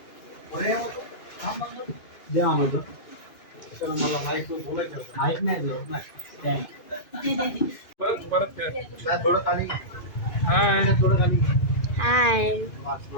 द्या आम्हाला. चला मला माईक बोलायचं होतं. माईक नाही दिलं. परत थोडं खाली, हाय थोडं खाली. हाय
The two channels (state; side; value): late; right; 2.4 ms